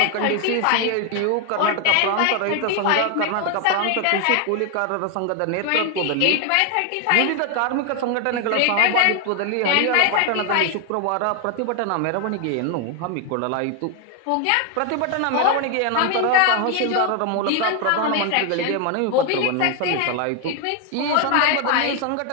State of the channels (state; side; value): different; both; correlation 0.01